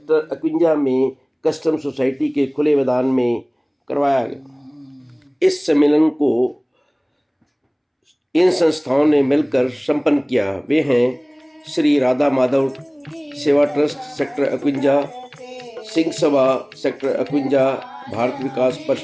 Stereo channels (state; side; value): identical; both; correlation 1.00